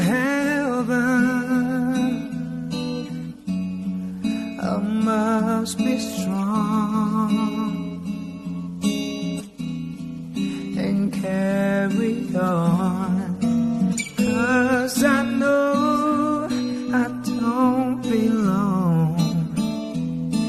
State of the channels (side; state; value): both; identical; correlation 1.00